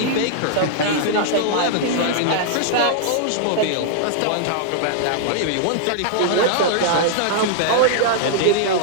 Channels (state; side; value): different; both; correlation -0.01